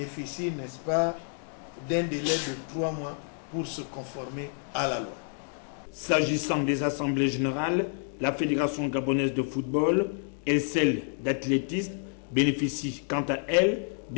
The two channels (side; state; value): right; silent; 55 dB below the other